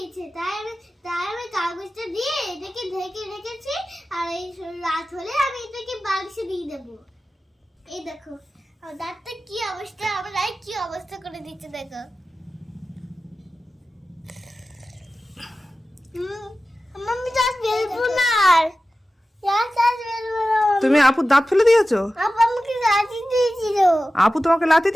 তাই আমি কাগজটা দিয়ে এটাকে ঢেকে রেখেছি। আর এই রাত হলে আমি এটাকে বাক্সে দিয়ে দেবো। এই দেখো আমার দাঁতটা কি অবস্থা, আমার রায় কি অবস্থা করে দিচ্ছে দেখো। মাম্মি দাঁত বেরবো না আর। তুমি আপুর দাঁত ফেলে দিয়েছো? আপু আমাকে লাথি দিয়েছিল। আপু তোমাকে লাথি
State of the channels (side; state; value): both; normal; correlation 0.95